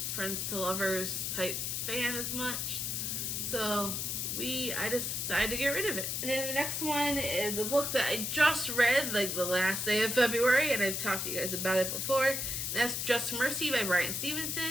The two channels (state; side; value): noise; left; hiss, 1 dB below the sound